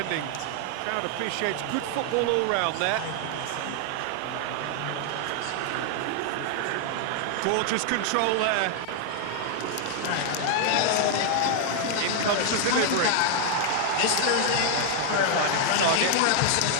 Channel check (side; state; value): both; different; correlation 0.00